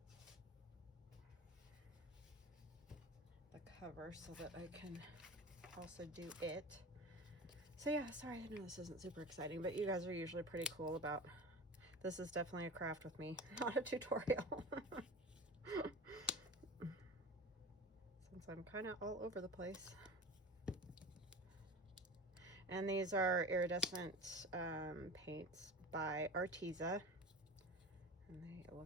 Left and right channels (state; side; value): normal; both; correlation 0.33